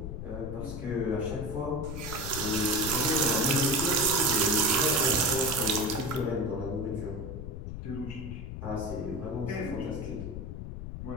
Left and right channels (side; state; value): left; noise; rumble, 7 dB below the sound